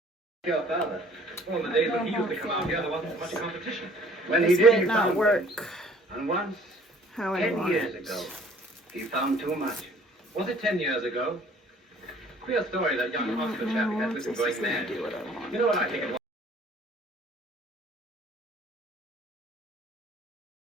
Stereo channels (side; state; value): both; normal; correlation 0.55